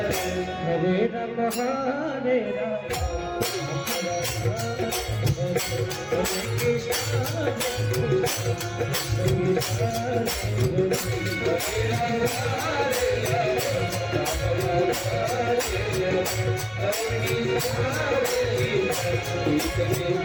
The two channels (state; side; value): identical; both; correlation 1.00